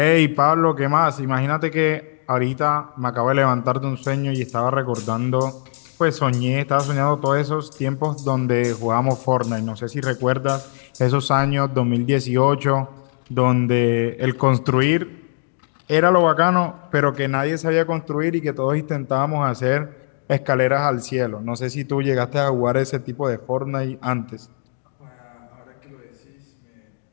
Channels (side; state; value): right; silent; digital silence